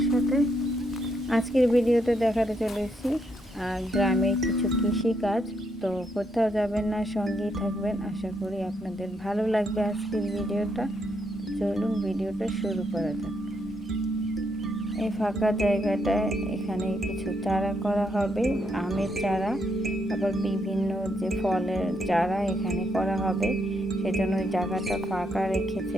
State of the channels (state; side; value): normal; both; correlation 0.77